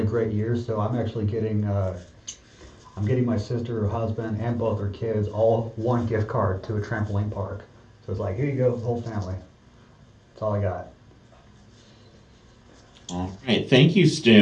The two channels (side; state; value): both; identical; correlation 1.00